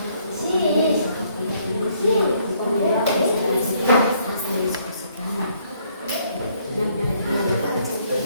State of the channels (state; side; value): inverted; both; correlation -0.67